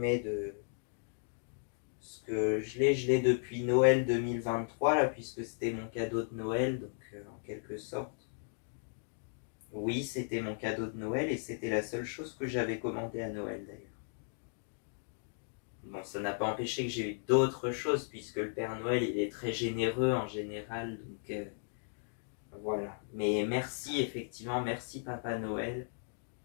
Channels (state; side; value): silent; right; digital silence